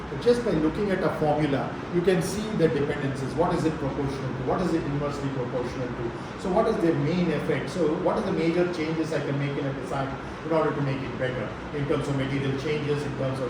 But just by looking at a formula, you can see the dependencies. What is it proportional to? What is it inversely proportional to? So what is the main effect? So what are the major changes I can make in a design in order to make it better in terms of material changes, in terms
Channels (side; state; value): both; identical; correlation 1.00